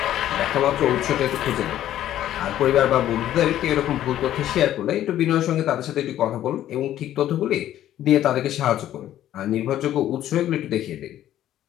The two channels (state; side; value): quieter; right; 12.3 dB